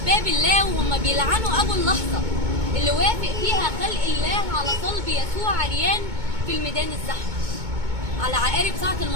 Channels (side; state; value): left; late; 2.2 ms